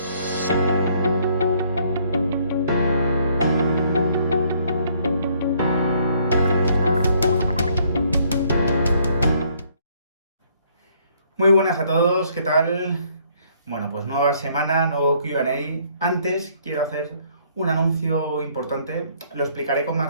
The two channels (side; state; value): both; inverted; correlation -0.65